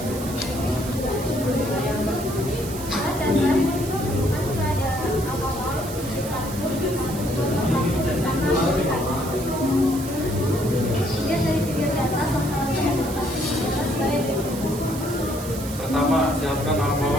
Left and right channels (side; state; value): right; noise; hiss, 12 dB below the sound